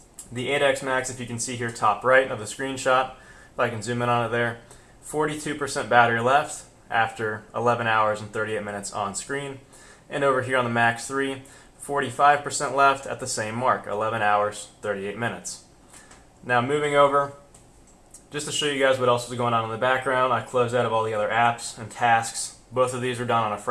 The 8X Max, if you can see here top right of the screenshot, if I can zoom in on it there, 42% battery left after 11 hours and 38 minutes on screen. And over here on the Max 3, 45% left at the same mark, 11 hours, 38 minutes. Now moving over, just to show you guys what else was going on in the background, I closed out of all the other apps and tasks. Both of these are done on a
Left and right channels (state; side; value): identical; both; correlation 1.00